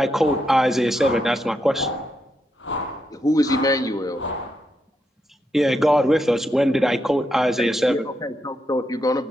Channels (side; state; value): both; normal; correlation 0.82